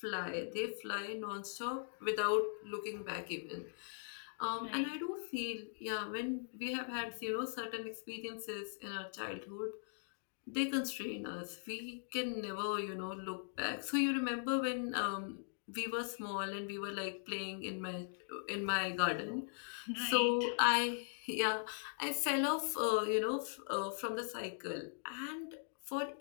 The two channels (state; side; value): silent; right; digital silence